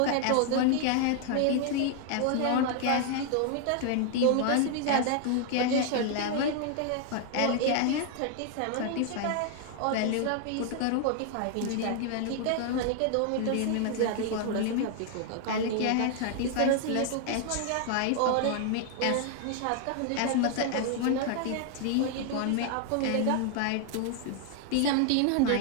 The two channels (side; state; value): both; different; correlation 0.00